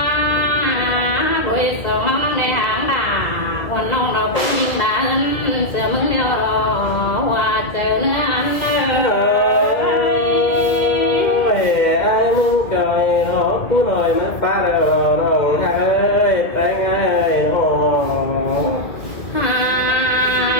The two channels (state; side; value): late; right; 2.2 ms